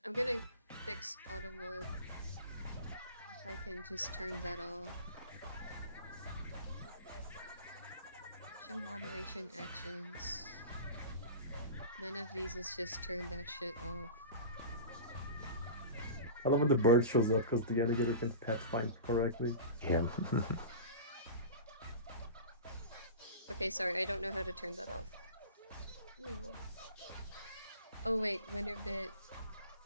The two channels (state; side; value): inverted; both; correlation -0.33